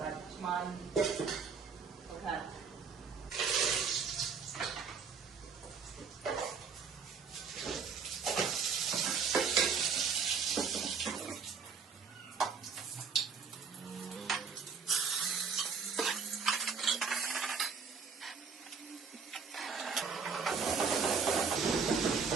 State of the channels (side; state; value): left; quieter; 5.6 dB